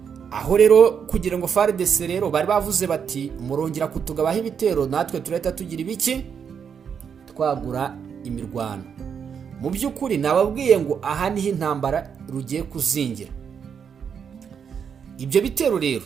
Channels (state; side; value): quieter; left; 7.2 dB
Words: Aho rero kugira ngo FARDC rero bari bavuze bati murongera kutugabaho ibitero, natwe tureta tugira ibiki twagura imirwano. mu by'ukuri nababwiye ngo aha niho intambara rugiye kuzingira. Ibyo bitero rero